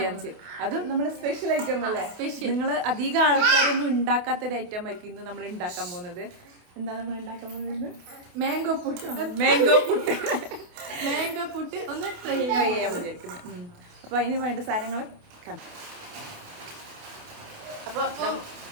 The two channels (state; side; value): late; left; 28 ms